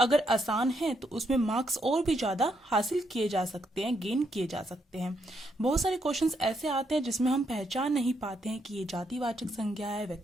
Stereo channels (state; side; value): normal; both; correlation 0.77